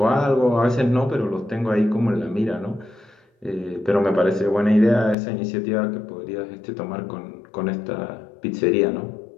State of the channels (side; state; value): right; drops out; at 5.2 s